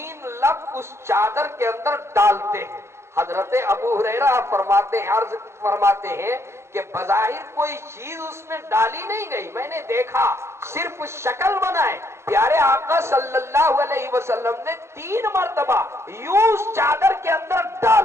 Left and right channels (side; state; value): left; late; 0.13 ms